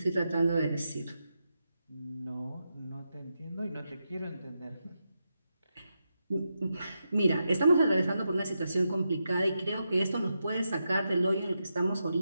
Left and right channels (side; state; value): both; inverted; correlation -0.86